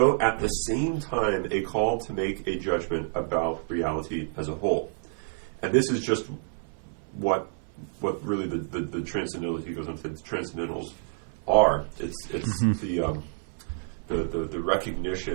at the same time a call to make a judgment about reality as a whole. And this is just what really the transcendental, he goes on to the transcendentals are. It's the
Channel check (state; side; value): silent; left; 55 dB below the other